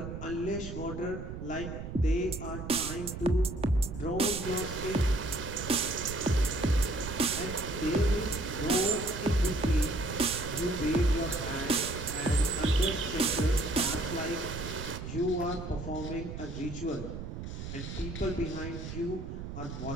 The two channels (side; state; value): right; noise; rumble, 8 dB below the sound